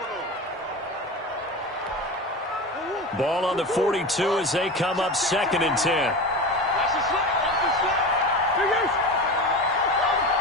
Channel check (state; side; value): normal; both; correlation 0.27